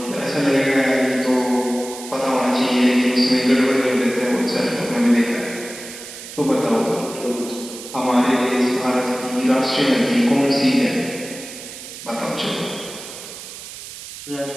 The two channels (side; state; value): right; noise; hiss, 13 dB below the sound